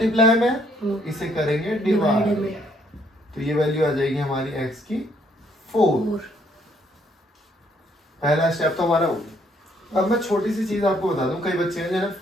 में, इसे करेंगे डिवाइड में, तो ये वैल्यू आ जाएगी हमारी x की 4। पहला स्टेप तो हमारा हो गया। अब मैं छोटी सी चीज आपको बता दूं, कई बच्चे हैं जिन्हें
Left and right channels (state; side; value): normal; both; correlation 0.68